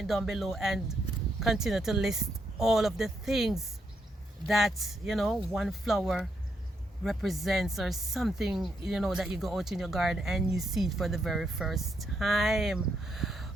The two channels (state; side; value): normal; both; correlation 0.78